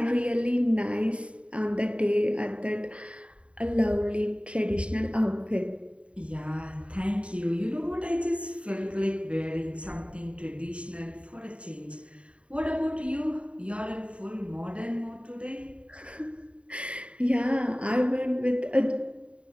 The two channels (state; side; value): late; left; 0.061 ms